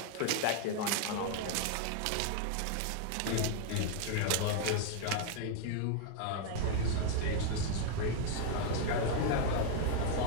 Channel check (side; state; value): both; different; correlation 0.00